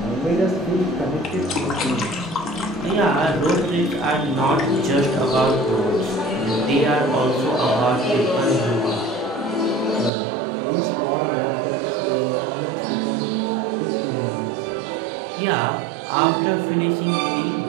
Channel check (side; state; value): left; drops out; at 10.1 s